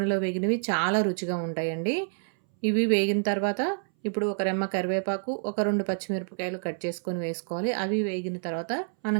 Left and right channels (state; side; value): silent; left; 59 dB below the other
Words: వేగినవి చాలా రుచిగా ఉంటాయండి. ఇవి వేగిన తర్వాత ఇప్పుడు ఒక రెమ్మ కరివేపాకు, ఒక 2 పచ్చిమిరపకాయలు కట్ చేసుకొని వేసుకోవాలి. అవి వేగిన తర్వాత మనం